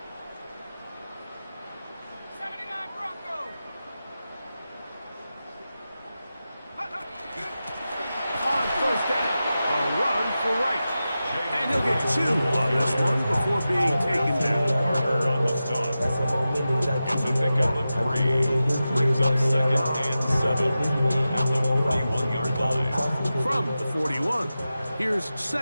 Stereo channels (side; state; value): both; inverted; correlation -0.93